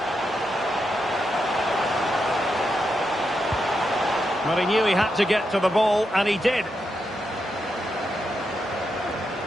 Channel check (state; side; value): normal; both; correlation 0.84